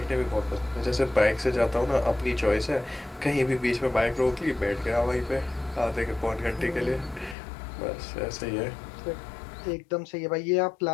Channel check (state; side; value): drops out; right; at 7.4 s